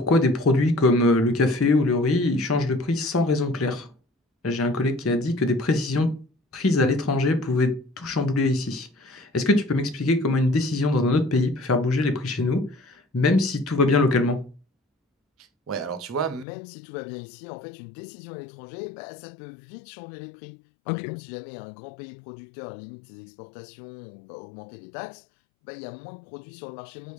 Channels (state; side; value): drops out; right; at 16.4 s